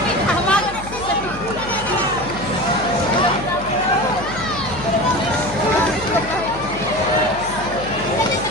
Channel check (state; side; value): noise; left; hum, 13 dB below the sound